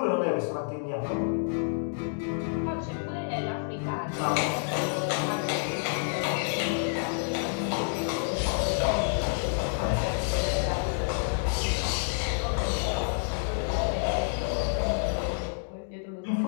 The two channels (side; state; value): right; silent; digital silence